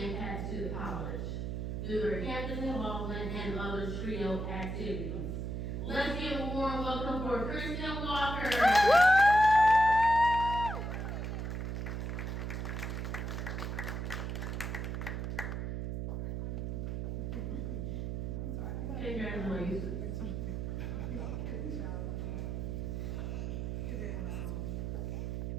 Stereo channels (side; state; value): right; noise; hum, 3 dB below the sound